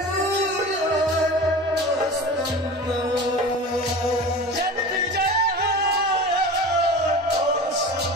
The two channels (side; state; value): both; normal; correlation 0.34